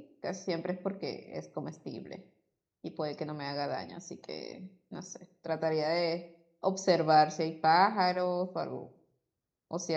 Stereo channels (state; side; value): identical; both; correlation 1.00